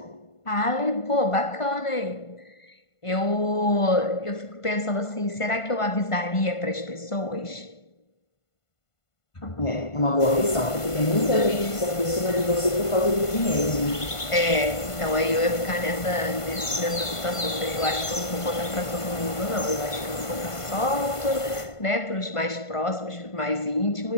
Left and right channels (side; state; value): right; late; 1.5 ms